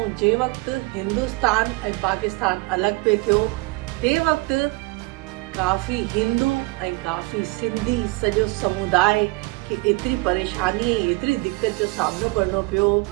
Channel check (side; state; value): left; quieter; 25.0 dB